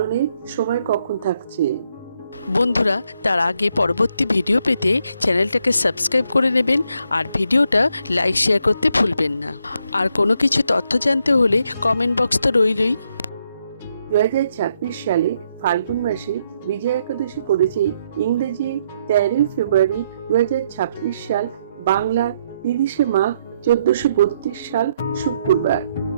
সময় কখন থাকছে। বন্ধুরা, তার আগে পরবর্তী ভিডিও পেতে চ্যানেলটাকে সাবস্ক্রাইব করে নেবেন আর ভিডিওটা লাইক শেয়ার করতে ভুলবেন না। আর কোনো কিছু তথ্য জানতে হলে কমেন্ট বক্স তো রইলই। 2026 সালে ফাল্গুন মাসে বিজয়া একাদশী পড়েছে ইংরেজি 13 ফেব্রুয়ারি 2026 সাল, বাংলা 30 মাঘ 1432 সাল শুক্রবার।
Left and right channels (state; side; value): inverted; both; correlation -0.76